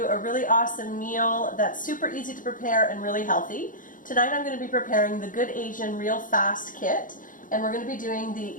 a really awesome meal that's super easy to prepare and really healthy. Tonight I'm going to be preparing the Good Asian Real Fast Kit, and we're going to be doing the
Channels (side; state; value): right; late; 0.39 ms